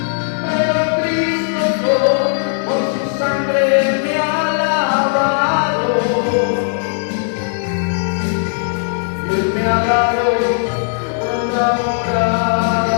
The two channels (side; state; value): right; silent; digital silence